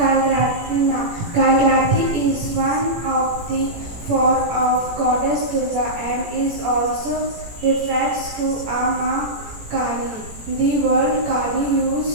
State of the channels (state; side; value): late; left; 18 ms